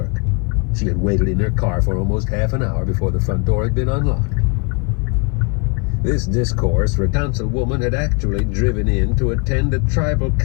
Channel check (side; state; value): right; quieter; 33.0 dB